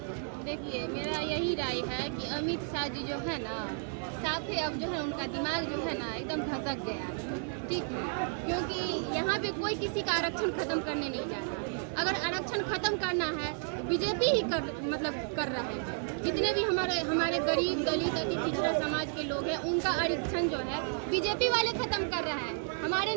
देखिए, मेरा यही राय है कि अमित शाह जी जो है ना, साफ ही अब जो है उनका दिमाग जो है ना एकदम धसक गया है, ठीक है। क्योंकि यहाँ पे कोई किसी का आरक्षण खत्म करने नहीं जा रहा। अगर आरक्षण खत्म करना है तो बीजेपी ही कर रहे हैं। जितने भी हमारे गरीब दलित अति पिछड़ा समाज के लोग हैं, उनका आरक्षण जो है बीजेपी वाले खत्म कर रहे हैं। हमारे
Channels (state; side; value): silent; left; 56 dB below the other